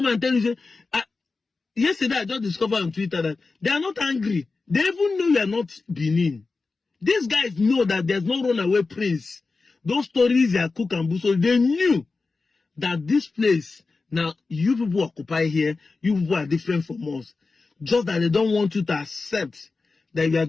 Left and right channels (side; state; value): right; quieter; 4.0 dB